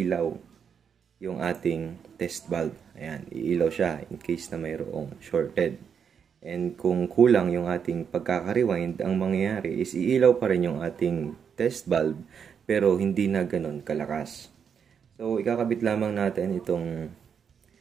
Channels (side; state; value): left; quieter; 7.1 dB